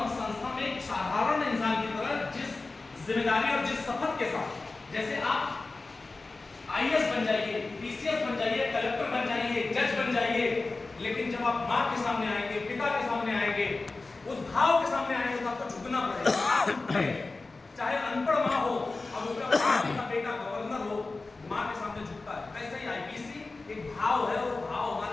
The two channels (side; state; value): right; quieter; 3.5 dB